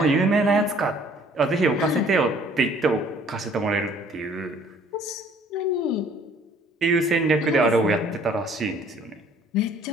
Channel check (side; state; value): both; normal; correlation 0.57